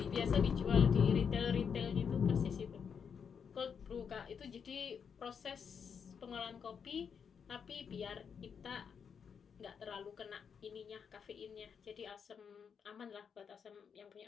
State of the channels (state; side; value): quieter; right; 6.8 dB